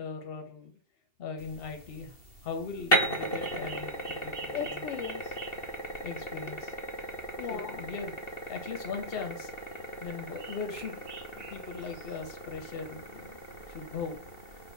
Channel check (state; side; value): late; right; 2.7 ms